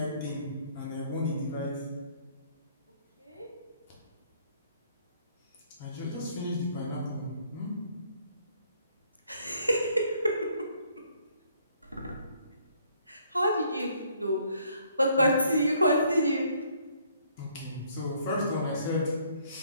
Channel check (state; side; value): inverted; both; correlation -0.64